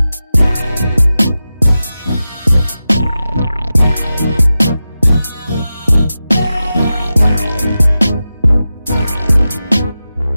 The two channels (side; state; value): both; inverted; correlation -0.93